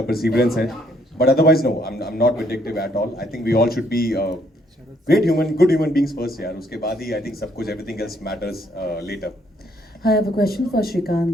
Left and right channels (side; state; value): both; normal; correlation 0.69